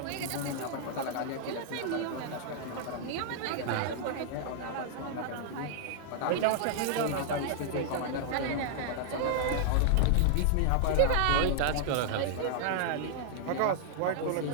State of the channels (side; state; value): both; different; correlation -0.01